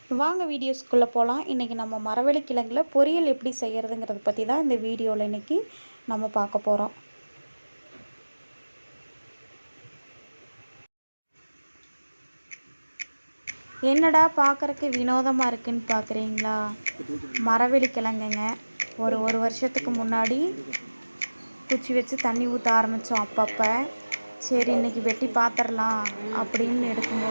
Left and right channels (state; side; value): inverted; both; correlation -1.00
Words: வாங்க வீடியோஸ்குள்ளே போகலாம். இன்றைக்கி நம்ம மரவள்ளி கிழங்குல பொரியல் எப்படி செய்கிறதுங்கிறத பற்றி தான் இந்த வீடியோவில் இன்றைக்கி நம்ம பார்க்க போகிறோம். என்னடா பார்க்குறக்கு வினோதமாக இருக்குன்னு பார்க்குறீங்களா? மரவள்ளி கிழங்குங்க. ஒரு வருஷத்துக்கு முன்னாடி குச்சி வச்சு தண்ணி ஊற்ற ஆரம்பித்தோம். அப்பப்போ சரி இன்றைக்கி வெட்டி பார்த்துடலாம் அப்படின்னு